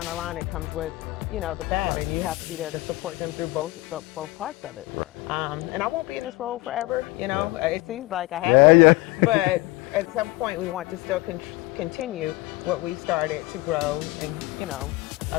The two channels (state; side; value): quieter; right; 20.5 dB